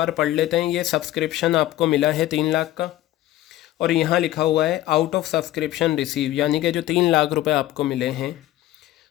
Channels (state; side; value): quieter; right; 14.9 dB